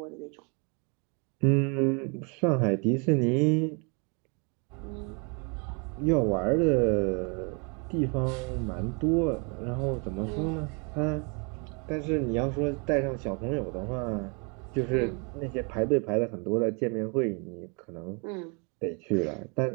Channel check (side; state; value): left; quieter; 34.2 dB